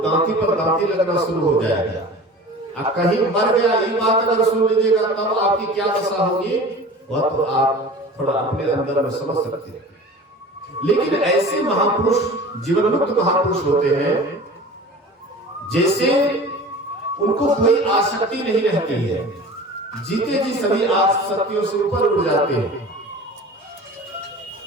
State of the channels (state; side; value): normal; both; correlation 0.39